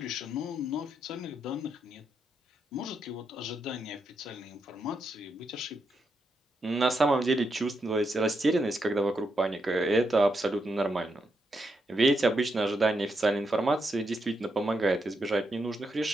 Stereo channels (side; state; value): both; normal; correlation 0.82